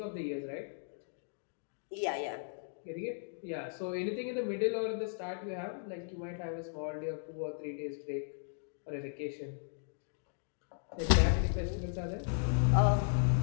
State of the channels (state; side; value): silent; right; digital silence